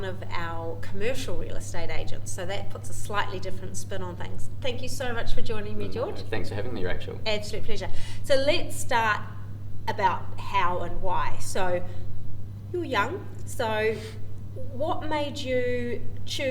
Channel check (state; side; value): identical; both; correlation 1.00